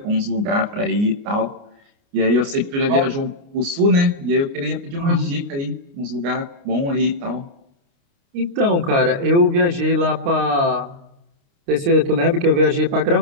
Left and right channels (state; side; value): late; left; 29 ms